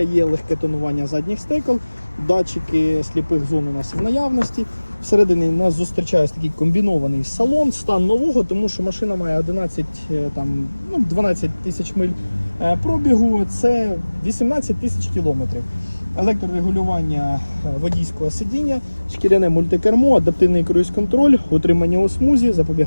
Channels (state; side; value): inverted; both; correlation -1.00